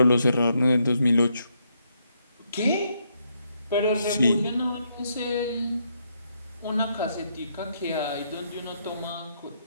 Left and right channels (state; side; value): inverted; both; correlation -0.76